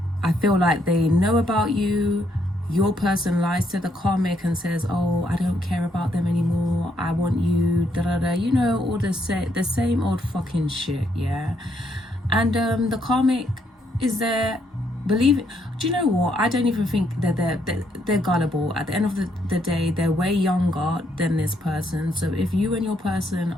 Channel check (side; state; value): both; normal; correlation 0.74